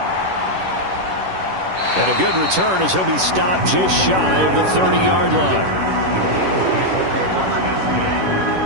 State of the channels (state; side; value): late; left; 11 ms